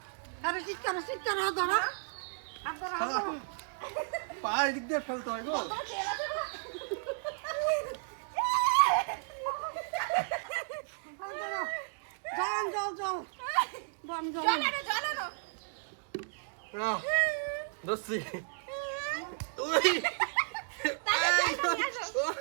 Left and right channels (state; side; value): silent; left; digital silence